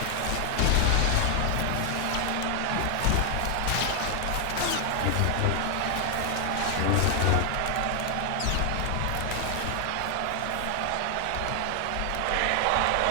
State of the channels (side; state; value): both; different; correlation 0.00